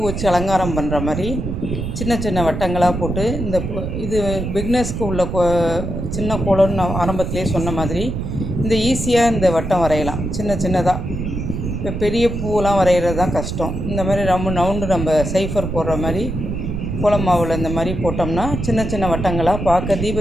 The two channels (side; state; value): right; noise; rumble, 4 dB below the sound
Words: வச்சு அலங்காரம் பண்ணுற மாதிரி சின்ன சின்ன வட்டங்களாக போட்டு இது பிக்னஸ்க்கு உள்ள சின்ன கோலம்னு நான் ஆரம்பத்திலே சொன்ன மாதிரி இந்த ஈஸியாக இந்த வட்டம் வரையலாம். சின்ன சின்னதாக. இப்போ பெரிய பூவெலாம் வரைகிறது தான் கஷ்டம். இந்த மாதிரி ரவுண்டு நம்ம சைஃபர் போடுற மாதிரி கோலம் மாவில் இந்த மாதிரி போட்டோம்னா சின்ன சின்ன வட்டங்களாக பார்க்க